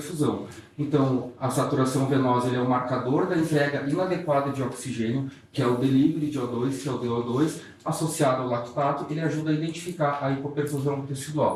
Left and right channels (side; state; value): both; identical; correlation 1.00